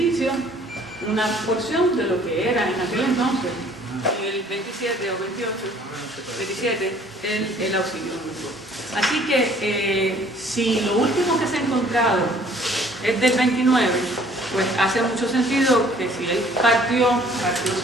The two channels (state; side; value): normal; both; correlation 0.56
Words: una porción de lo que era en aquel entonces, en el 27 o 28, 27, el Auxilio Mutuo. Así que si lo último que se ha encontrado es del 29, pues hace mucho sentido que si él partió